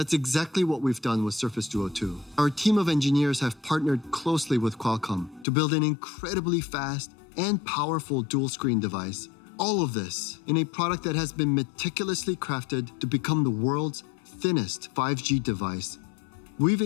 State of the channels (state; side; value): drops out; right; at 5.5 s